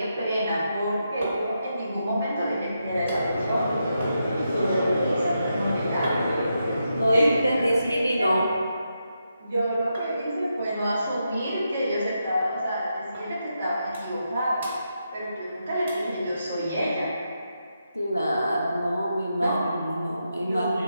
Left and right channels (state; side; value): inverted; both; correlation -0.84